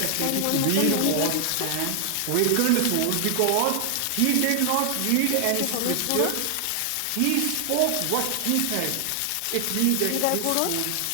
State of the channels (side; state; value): both; different; correlation 0.00